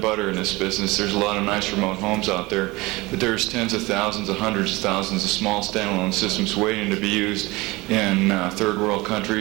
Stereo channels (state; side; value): quieter; left; 22.3 dB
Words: butter in this business. There's a lot of nice remote homes out there, but there's tens of thousands, hundreds of thousands of small standalone systems waiting to be used in third world